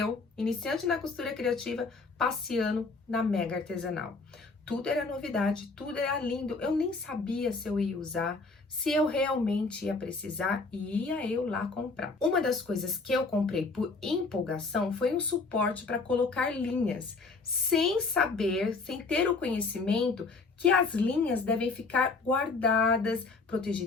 iniciante na costura criativa, passeando na mega artesanal. Tudo era novidade, tudo era lindo. Eu nem sabia se eu ia usar, se eu realmente ia precisar e ia eu lá comprar. Uma das coisas que eu comprei por empolgação foi um suporte para colocar linhas, sem saber, sem ter o conhecimento que as linhas devem ficar guardadas,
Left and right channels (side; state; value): right; quieter; 4.0 dB